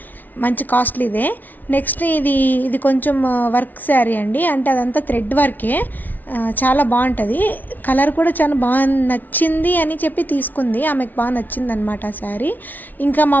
మంచి కాస్ట్లీదే. నెక్స్ట్ ఇది కొంచెం వర్క్ శారీ అండి, అంటే అదంతా థ్రెడ్ వర్కే. చాలా బాగుంటుంది. కలర్ కూడా చాలా బాగా నచ్చింది అని చెప్పి తీసుకుంది. ఆమెకు బాగా నచ్చింది అనమాట ఆ శారీ. ఇంకా మా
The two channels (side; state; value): right; late; 0.082 ms